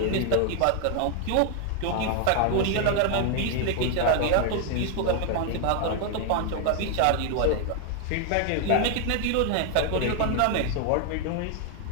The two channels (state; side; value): different; both; correlation 0.00